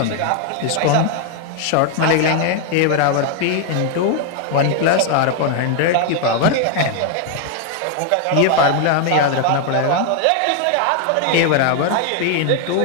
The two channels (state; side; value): different; both; correlation 0.00